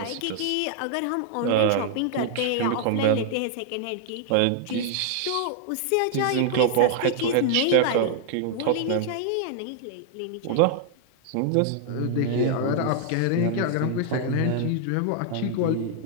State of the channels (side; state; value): both; different; correlation 0.00